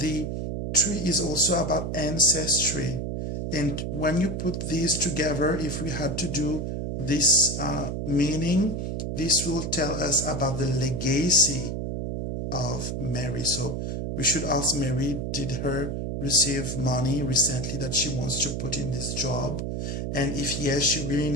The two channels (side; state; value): right; noise; hum, 3 dB below the sound